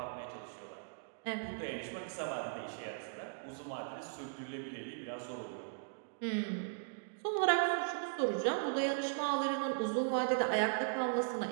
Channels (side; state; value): left; silent; digital silence